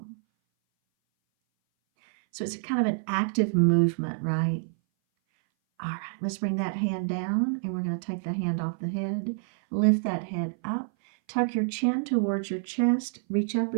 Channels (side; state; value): left; silent; 58 dB below the other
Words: So it's kind of an active movement, right? All right, let's bring that hand down, and we're going to take the hand off the head. Lift that head up. Tuck your chin towards your chest. Reach up